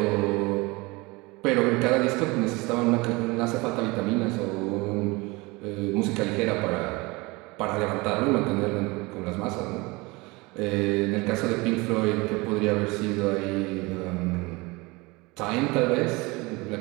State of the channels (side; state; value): left; quieter; 24.3 dB